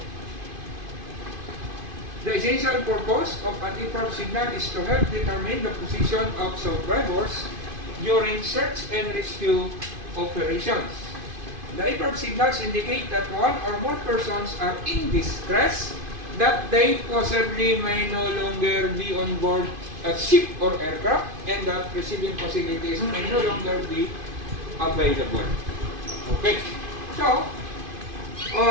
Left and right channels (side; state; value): left; late; 2.5 ms